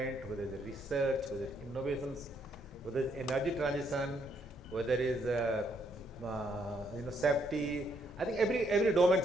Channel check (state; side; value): normal; both; correlation 0.72